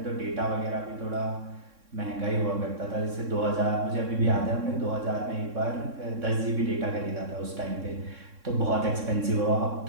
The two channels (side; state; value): left; late; 3.6 ms